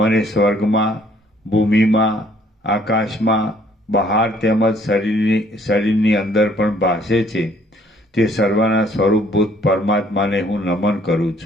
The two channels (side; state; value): both; normal; correlation 0.62